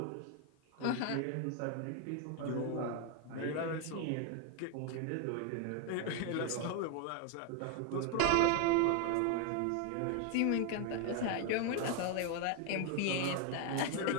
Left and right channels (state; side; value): different; both; correlation 0.01